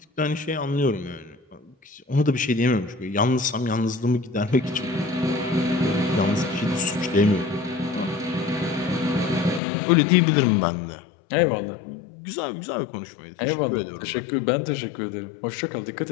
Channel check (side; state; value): right; drops out; at 9.6 s